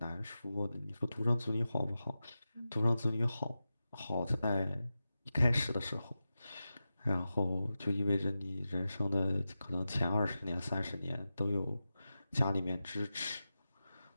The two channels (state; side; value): inverted; both; correlation -0.92